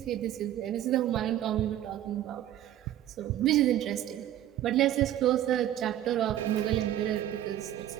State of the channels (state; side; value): quieter; left; 12.2 dB